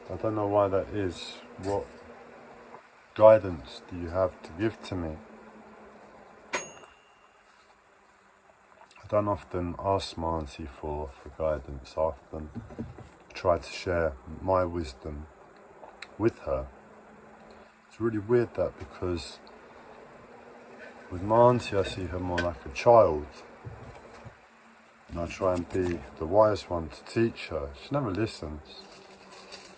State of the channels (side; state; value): both; identical; correlation 1.00